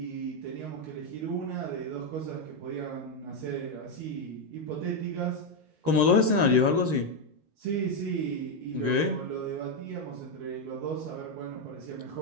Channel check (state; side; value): late; left; 13 ms